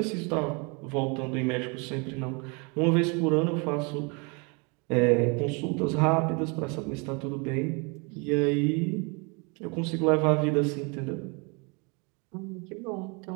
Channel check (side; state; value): left; quieter; 31.8 dB